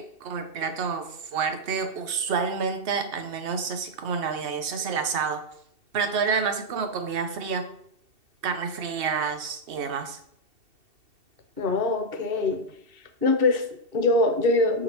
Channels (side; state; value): left; late; 2.7 ms